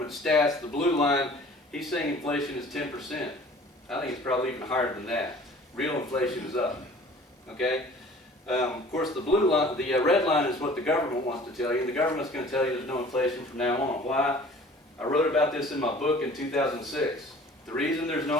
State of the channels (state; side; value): normal; both; correlation 0.48